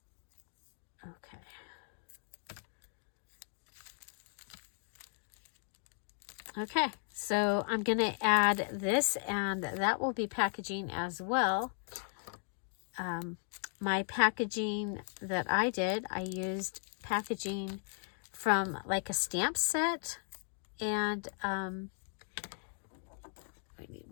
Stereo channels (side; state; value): right; silent; 53 dB below the other